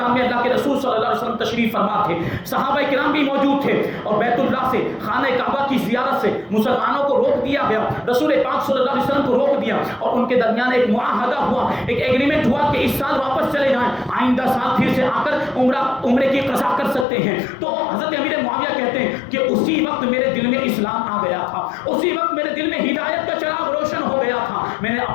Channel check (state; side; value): drops out; right; at 17.1 s